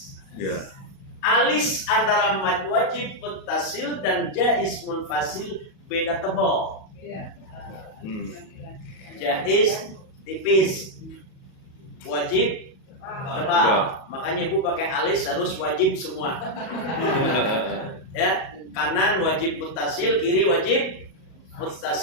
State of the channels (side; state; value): right; late; 37 ms